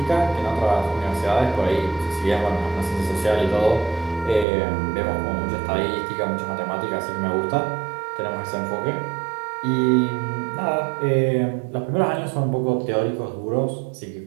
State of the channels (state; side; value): drops out; left; at 4.5 s